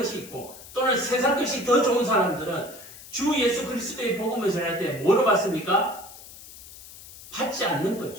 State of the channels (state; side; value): noise; left; hiss, 17 dB below the sound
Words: 있고 또는 세상 것이 더 좋은 사람들은 주 예수 그리스도의 복음을 전할 때 뭐로 받습니까? 받지 않는